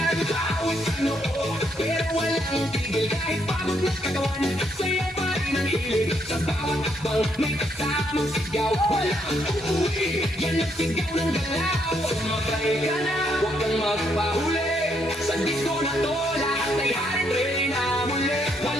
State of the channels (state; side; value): normal; both; correlation 0.74